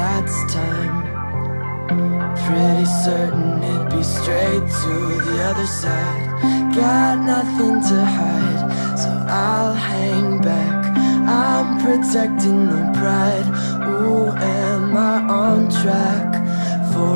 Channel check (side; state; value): both; inverted; correlation -1.00